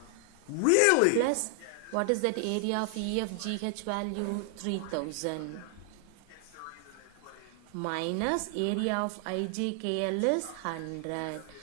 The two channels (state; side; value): different; both; correlation 0.00